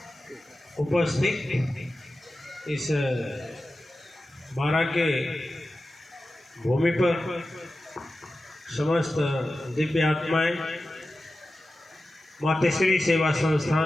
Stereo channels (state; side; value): normal; both; correlation 0.93